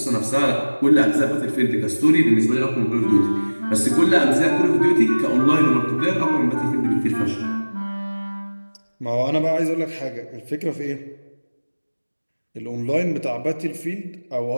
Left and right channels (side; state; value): both; inverted; correlation -1.00